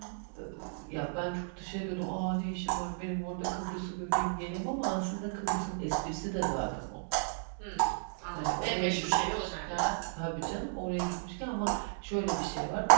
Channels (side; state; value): left; silent; digital silence